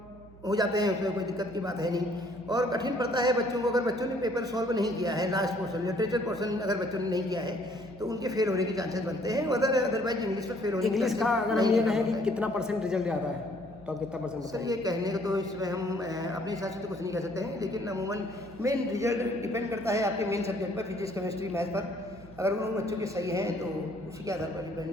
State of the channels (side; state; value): right; noise; hum, 20 dB below the sound